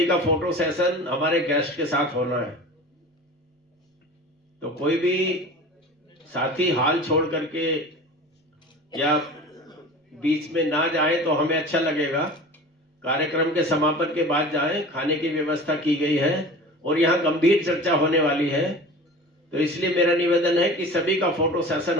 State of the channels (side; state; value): both; normal; correlation 0.37